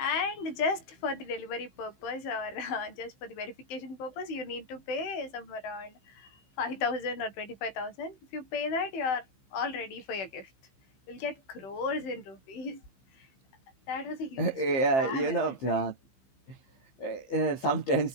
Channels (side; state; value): right; late; 15 ms